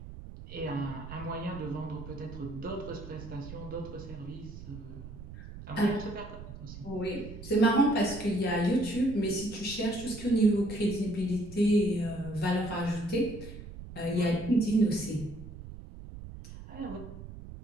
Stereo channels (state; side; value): noise; right; rumble, 13 dB below the sound